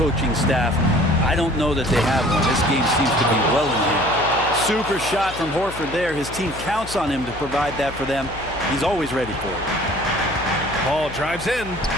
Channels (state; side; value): noise; left; hum, 14 dB below the sound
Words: staff. I don't know that they have one. This game seems to be well in hand. Super shot from Horford there. His team counts on him to provide that for them. He's always ready for it. Paul drives in.